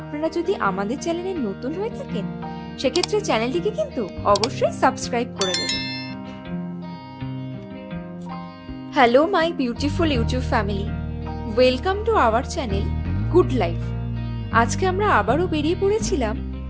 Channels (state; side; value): identical; both; correlation 1.00